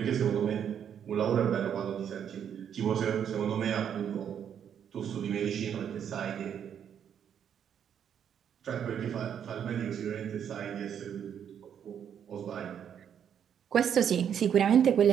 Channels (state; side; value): quieter; left; 8.6 dB